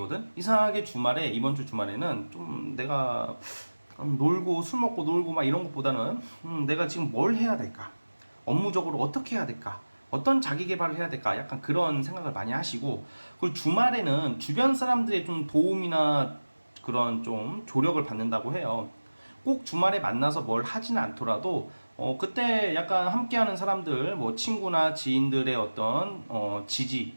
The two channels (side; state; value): both; inverted; correlation -1.00